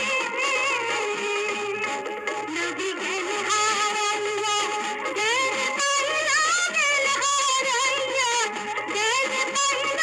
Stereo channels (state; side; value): identical; both; correlation 1.00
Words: নবী জ্ঞান হারাইয়া জ্ঞান পাইলা, জ্ঞান হারাইয়া জ্ঞান